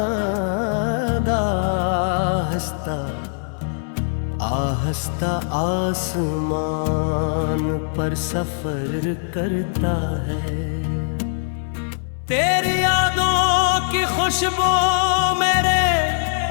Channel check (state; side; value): silent; right; digital silence